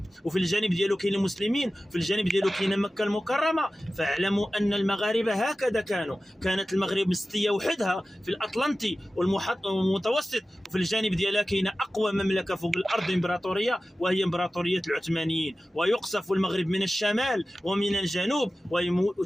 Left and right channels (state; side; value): normal; both; correlation 0.95